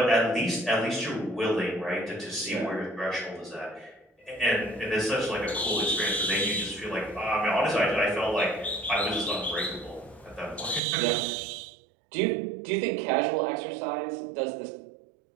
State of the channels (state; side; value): drops out; left; at 10.8 s